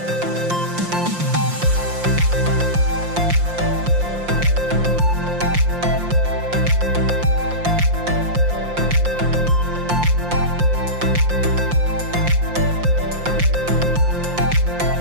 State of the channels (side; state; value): left; late; 5.7 ms